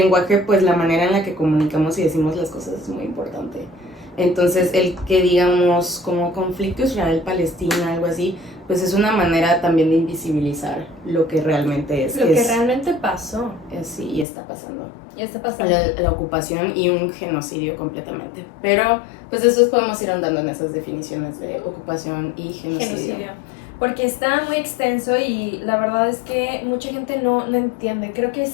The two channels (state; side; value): drops out; right; at 14.2 s